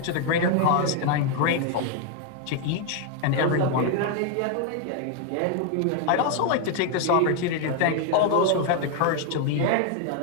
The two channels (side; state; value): both; different; correlation 0.01